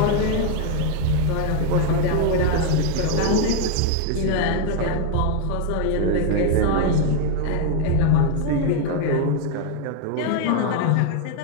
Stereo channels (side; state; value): both; different; correlation 0.01